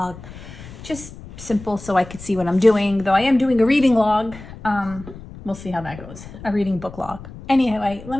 just simple, so I could see what I'm doing. Though I am doing a reading log. We'll see how that goes. A reading book log. Anyway, let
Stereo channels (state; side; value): noise; left; rumble, 15 dB below the sound